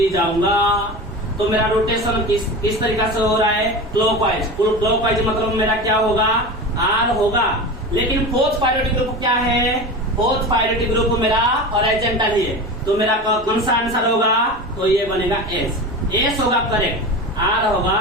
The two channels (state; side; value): normal; both; correlation 0.28